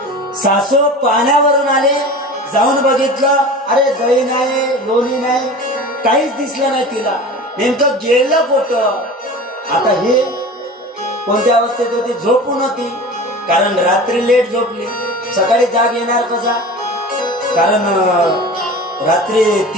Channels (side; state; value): both; normal; correlation 0.35